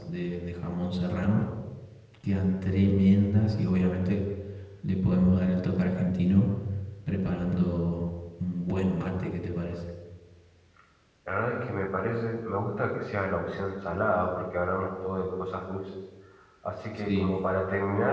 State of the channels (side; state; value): both; identical; correlation 1.00